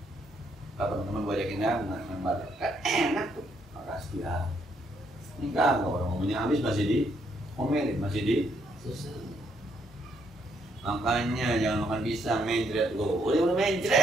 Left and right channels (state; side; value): normal; both; correlation 0.73